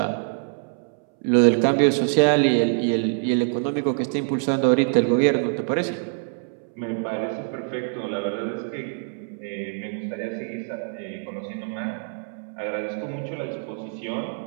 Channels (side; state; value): left; silent; 62 dB below the other